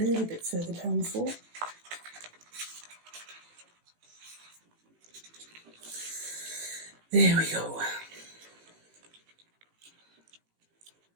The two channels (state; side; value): late; left; 18 ms